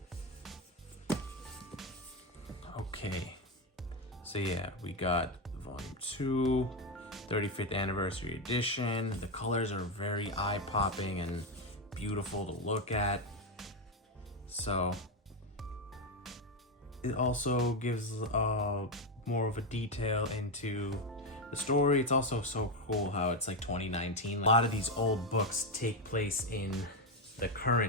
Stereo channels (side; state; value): both; normal; correlation 0.08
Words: Okay. So yeah, we got volume 2, 35th anniversary edition. The colors are very eye-popping and beautiful to look at. So it also gives more of a detail into the story. It's also so cool how it's like 2019. A lot of these old books take place in the